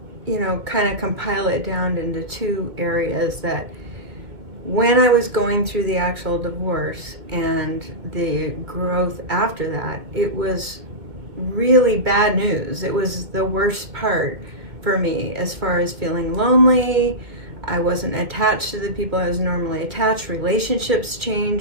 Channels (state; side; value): late; left; 2.2 ms